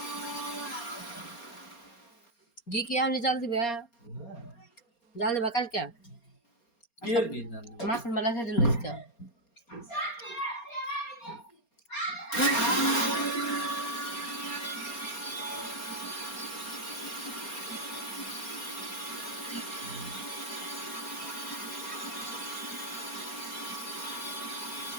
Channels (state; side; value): late; right; 4.3 ms